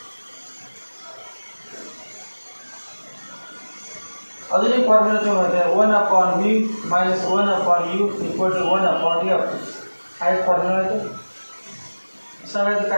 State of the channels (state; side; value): inverted; both; correlation -1.00